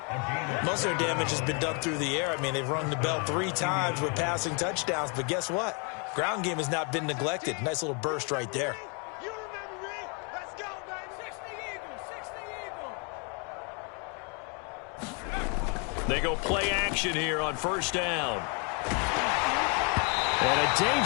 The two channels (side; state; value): right; quieter; 35.5 dB